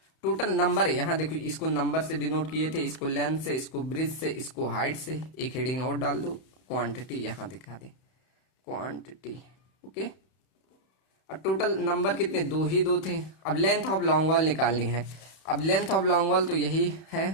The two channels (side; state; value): right; late; 31 ms